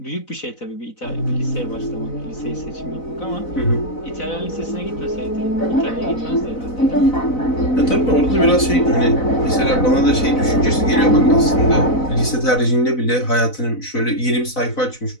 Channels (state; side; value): late; right; 4.0 ms